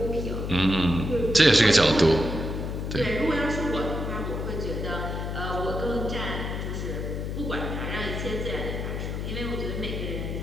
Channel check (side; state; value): left; noise; hum, 4 dB below the sound